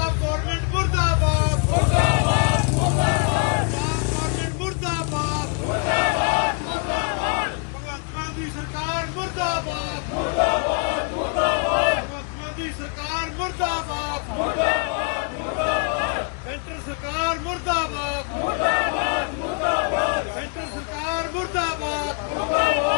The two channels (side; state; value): right; quieter; 37.0 dB